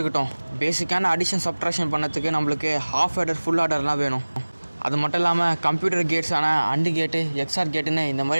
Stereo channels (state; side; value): inverted; both; correlation -1.00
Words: பேசிக்கான அடிஷன் சப்ட்ராக்ஷன் பண்ணதுக்கு நம்மளுக்கு ஹாஃப் ஆர்டர் ஃபுல் ஆர்டர்லாம் வேணும். அது மட்டும் இல்லாமல் கம்ப்யூட்டர் கேட்ஸான அண்டு கேட்டு எக்ஸ்ஆர் கேட்டுன்னு இந்த